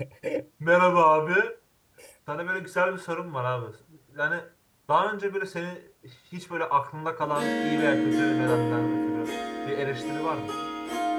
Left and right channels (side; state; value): both; identical; correlation 1.00